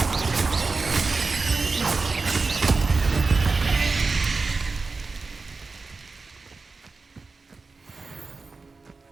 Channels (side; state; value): left; quieter; 4.1 dB